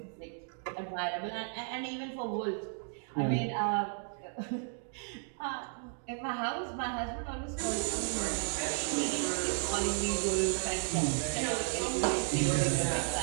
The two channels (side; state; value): left; silent; 55 dB below the other